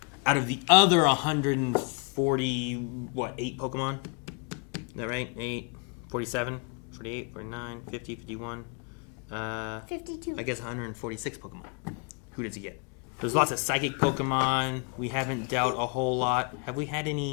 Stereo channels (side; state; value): right; quieter; 34.2 dB